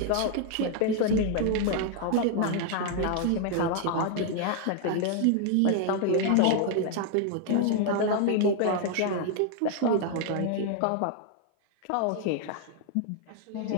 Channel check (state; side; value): different; both; correlation 0.00